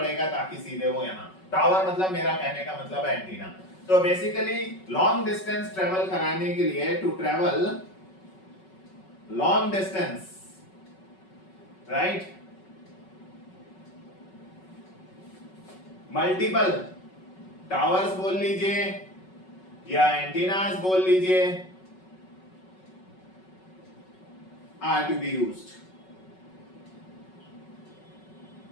ताकि सीधे वो यहाँ, टावर मतलब मेरा कहने का मतलब एंटीना। तो बेसिकली लॉन्ग डिस्टेंस ट्रेवल कराने के लिए, to travel long distance, right, multiple towers बोल लीजिए या एंटीनास बोल लीजिए, are to be used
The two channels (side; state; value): right; late; 5.3 ms